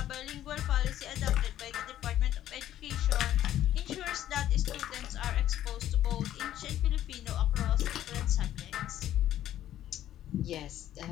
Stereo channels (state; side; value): quieter; right; 12.2 dB